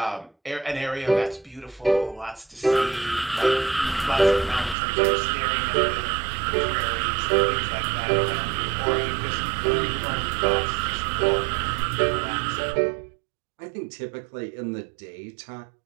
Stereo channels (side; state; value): left; drops out; at 4.8 s